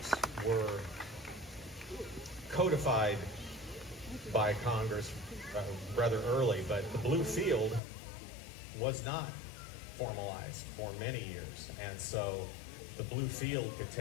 were codified by Congress rather early, but the blue field was not formalized for many years. And so the blue field could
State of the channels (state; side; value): drops out; right; at 7.8 s